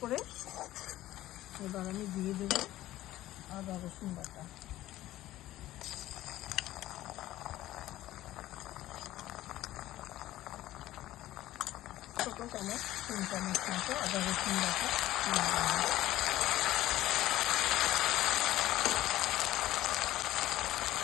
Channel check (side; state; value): right; quieter; 15.1 dB